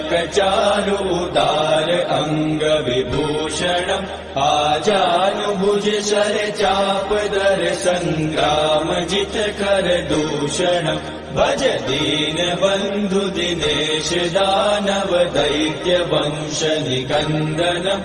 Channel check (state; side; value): identical; both; correlation 1.00